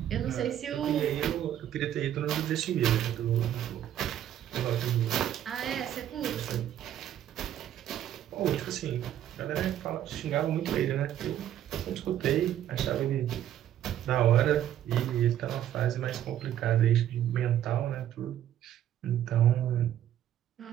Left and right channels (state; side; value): quieter; left; 11.2 dB